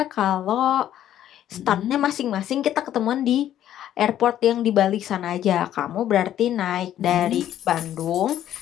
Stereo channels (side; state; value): right; quieter; 11.5 dB